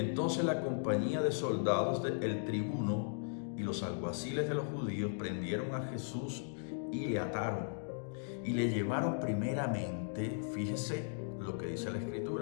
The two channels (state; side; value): silent; right; digital silence